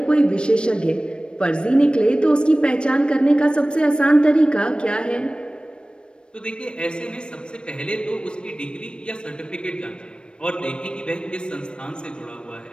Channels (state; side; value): late; right; 0.055 ms